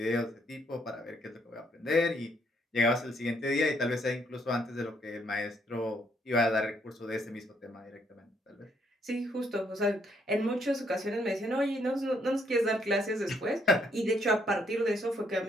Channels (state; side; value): normal; both; correlation 0.71